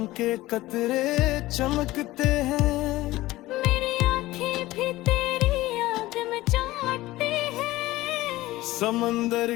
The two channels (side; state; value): right; quieter; 17.7 dB